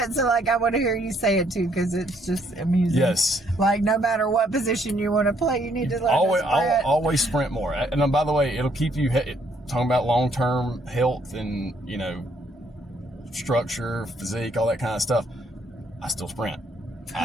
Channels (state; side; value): normal; both; correlation 0.69